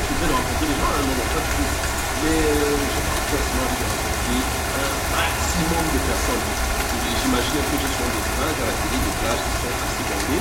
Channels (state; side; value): identical; both; correlation 1.00